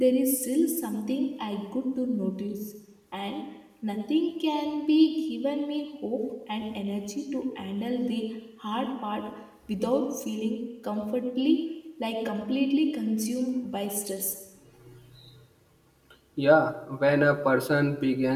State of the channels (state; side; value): identical; both; correlation 1.00